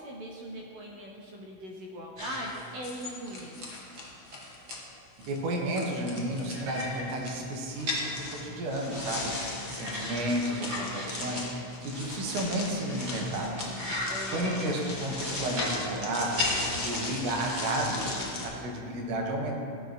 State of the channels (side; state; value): left; late; 16 ms